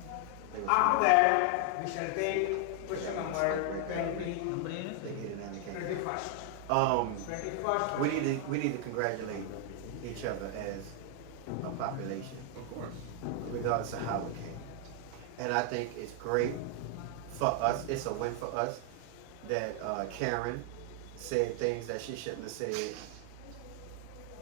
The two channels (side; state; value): both; different; correlation 0.00